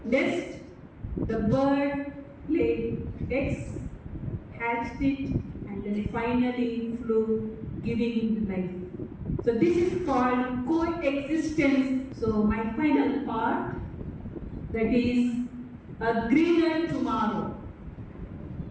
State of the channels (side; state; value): both; identical; correlation 1.00